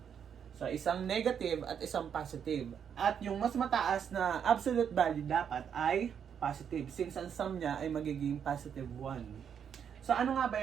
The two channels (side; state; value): left; quieter; 7.9 dB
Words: So, isang negative at isang positive. At yung mas mataas na absolute value dapat ay positive, since ang sum niya ay magiging positive 1. So, ano nga ba